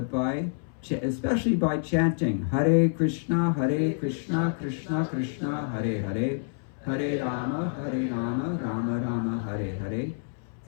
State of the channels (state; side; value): silent; right; 60 dB below the other